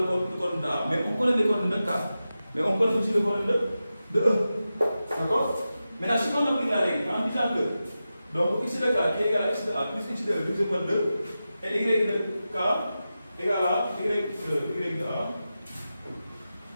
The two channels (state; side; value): inverted; both; correlation -0.92